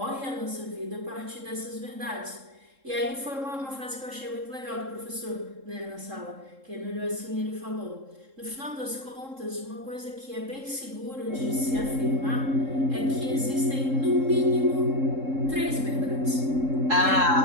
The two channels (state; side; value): late; left; 3.7 ms